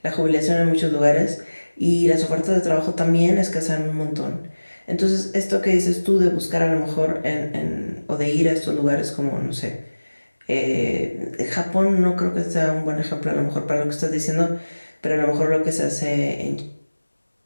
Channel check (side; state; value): both; inverted; correlation -1.00